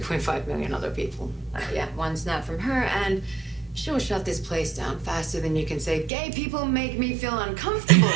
million other people. Yeah, one snap from her, and she'll shut this place down faster than you can say, gay people make me feel uncomfortable.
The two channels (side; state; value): left; drops out; at 6.1 s